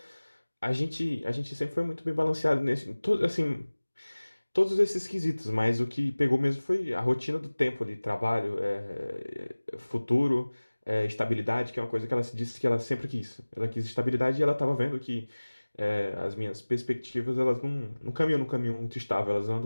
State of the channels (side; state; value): both; inverted; correlation -1.00